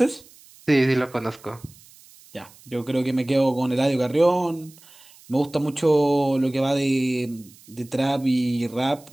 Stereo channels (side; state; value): right; noise; hiss, 25 dB below the sound